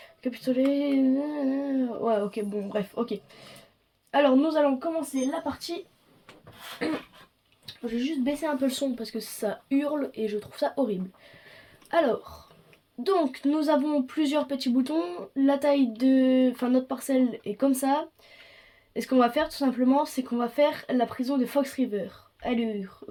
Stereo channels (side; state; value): both; identical; correlation 1.00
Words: capitulé. Ouais, ok, bon, bref, ok. Alors, nous allons commencer la partie. Je vais juste baisser un peu le son parce que ça hurle et je trouve ça horrible. Alors, donc, nous avons plusieurs petits boutons. La taille de. Enfin, notre parcelle est comme ça. Et ce qu'on va faire, tout simplement, c'est qu'on va faire la prison de Fox River. Allure,